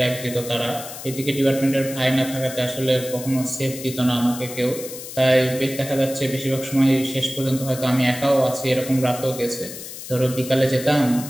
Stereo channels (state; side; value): noise; left; hiss, 11 dB below the sound